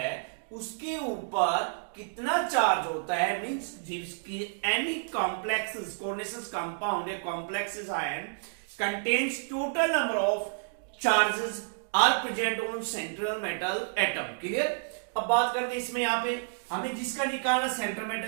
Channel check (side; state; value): left; silent; digital silence